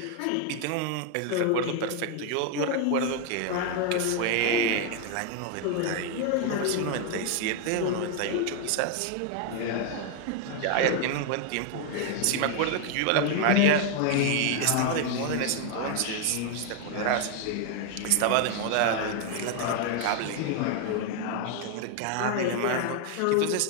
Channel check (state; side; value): different; both; correlation 0.01